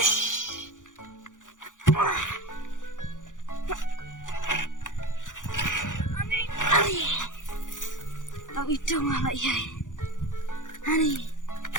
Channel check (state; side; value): late; right; 0.87 ms